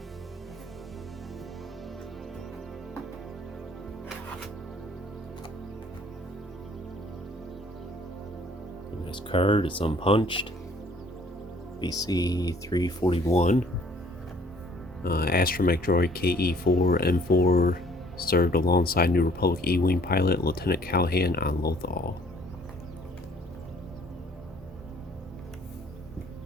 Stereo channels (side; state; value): both; normal; correlation 0.58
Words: Nice card, it's unpunched. BC 341. Astromech droid KE4-N4 served alongside New Republic E-Wing pilot Lieutenant Callahan on Lothal.